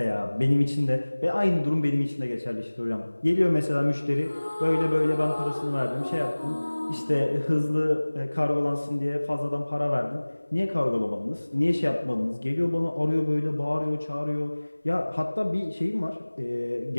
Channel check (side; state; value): both; inverted; correlation -1.00